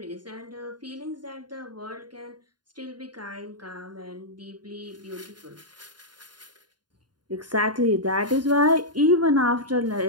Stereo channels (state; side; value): late; left; 0.70 ms